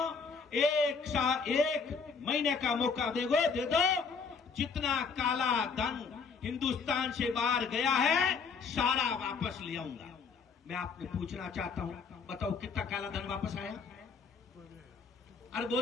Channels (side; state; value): right; quieter; 5.2 dB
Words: एक महीने का मौका दे दो, जितना काला धन हिंदुस्तान से बाहर गया है सारा वापस ले आऊंगा। मैं आपने पूछना चाहता हूं, बताओ कितना काला धन वापस आया? अरे